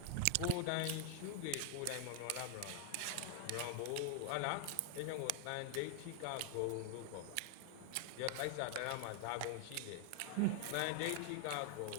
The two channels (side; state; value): both; different; correlation 0.00